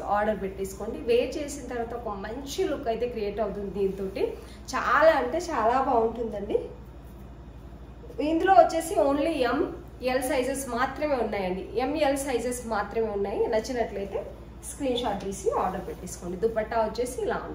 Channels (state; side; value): identical; both; correlation 1.00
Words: ఆర్డర్ పెట్టేసుకోండి. వేర్ చేసిన తర్వాత ఒక మంచి లుక్ అయితే క్రియేట్ అవుతుంది. దీంతో చాలా అంటే చాలా బాగుంటుందండి. ఇందులో వచ్చేసి ఓన్లీ ML సైజెస్ మాత్రమే ఉన్నాయండి. ML సైజెస్ మాత్రమే ఉన్నాయి. నచ్చినట్లయితే స్క్రీన్ షాట్ తీసి ఆర్డర్ పెట్టేసుకోండి. దుపట్టా వచ్చేసి ఇలా